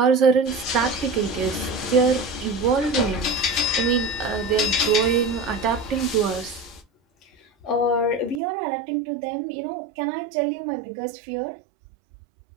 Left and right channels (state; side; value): drops out; left; at 8.4 s